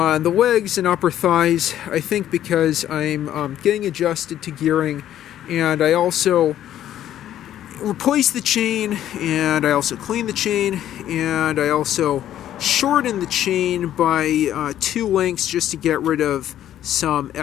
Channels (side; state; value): right; quieter; 11.6 dB